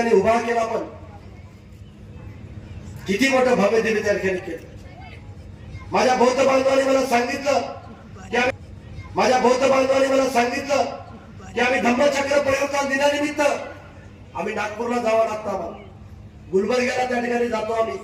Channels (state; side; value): identical; both; correlation 1.00